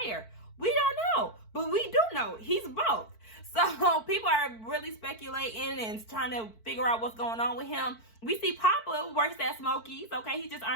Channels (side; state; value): right; late; 4.5 ms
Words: We don't know, but we do know he's both. So people are really speculating and trying to figure out what's going on with him. We see Papa works at Smokies. Okay, he just